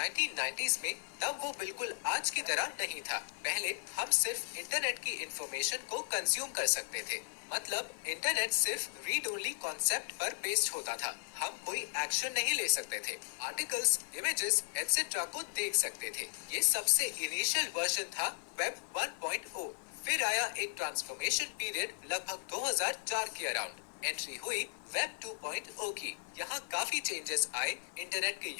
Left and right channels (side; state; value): right; silent; digital silence